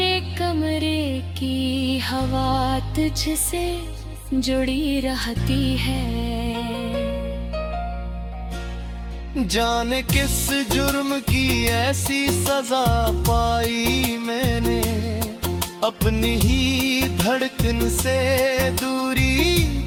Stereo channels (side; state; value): both; identical; correlation 1.00